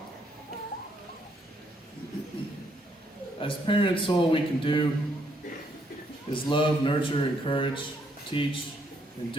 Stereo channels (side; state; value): both; normal; correlation 0.72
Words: As parents, all we can do is love, nurture, encourage, teach, and